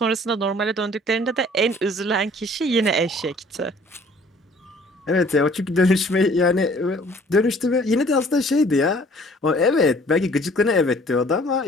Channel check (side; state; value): both; normal; correlation 0.55